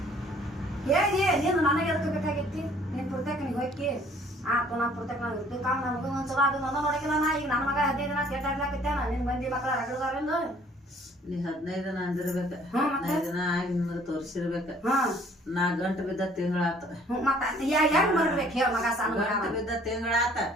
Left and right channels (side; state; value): both; normal; correlation 0.57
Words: ಹೇಳಿ ನೀನು ನನಗೆ ಎದಕ್ಕೆ ಬೇಕಾಗಿತ್ತಿ ನೀನು ಪುರ್ತಕ ನೀವು ಹೋಗಿ ಆತು ನಾ ಪುರ್ತಕ ನಾವು ಇರ್ತೀವಿ ಕಾಮ ನನ್ನ ಮಗ ಒಂದ್ಸಲ ಅದು ನನ್ನ ನೋಡಕಿಲ್ಲ ನಾ ಈಗ ನನ್ನ ಮಗ 15 ದಿನ ಕೆಟ್ಟಾಗ್ಲಾಕತ್ತೇನ ನಿನ್ ಮಂದಿ ಮಕ್ಕಳ ರಗಡದಾರಿಂದ ನೀ 15 ದಿನ ಅಂದಿರ್ಬೇಕ 15 ದಿನ ಆಗಿ ನಿಮಗೆ ತೋರಿಸಿರ್ಬೇಕ ನಾ ಗಂಟು ಬಿದ್ದ ತಿಂಗಳಾತ ಹೆಂಗ್ ಮಾಡ್ಬೇಕು ಹೇಳ ಮಗ ಸಣ್ಣ ಗಂಟು ಬಿದ್ದ ತಿಂಗಳಾತ